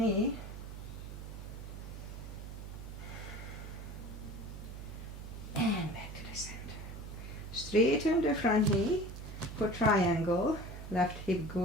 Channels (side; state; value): right; noise; hum, 10 dB below the sound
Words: And back to the center. Straighten the front knee for triangle. Left hip